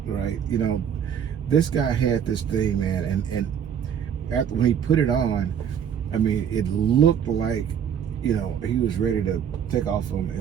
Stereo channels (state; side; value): quieter; left; 8.4 dB